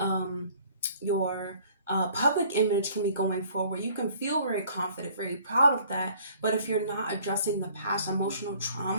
public image can be going forward. You can feel very confident, very proud of that. But if you're not addressing the past emotional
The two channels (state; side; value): inverted; both; correlation -0.55